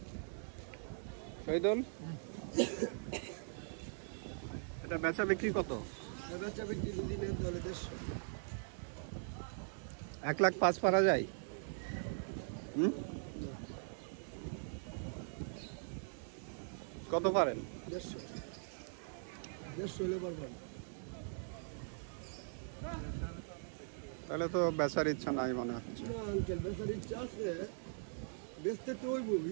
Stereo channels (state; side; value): silent; left; digital silence